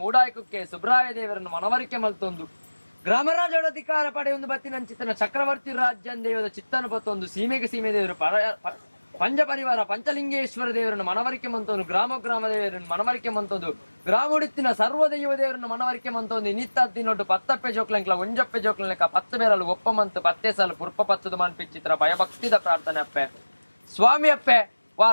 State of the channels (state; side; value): inverted; both; correlation -1.00